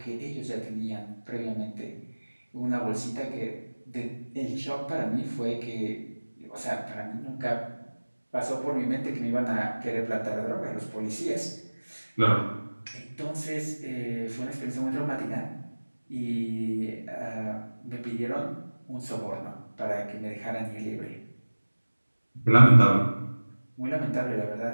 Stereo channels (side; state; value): both; inverted; correlation -1.00